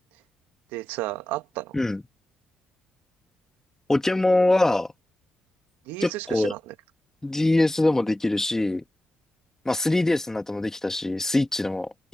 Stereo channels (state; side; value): normal; both; correlation 0.95